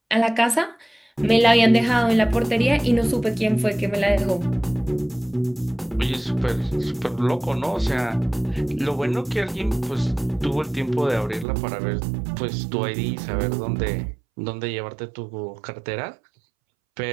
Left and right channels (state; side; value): drops out; left; at 11.5 s